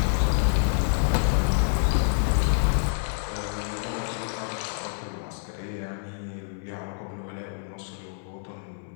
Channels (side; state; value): right; silent; 60 dB below the other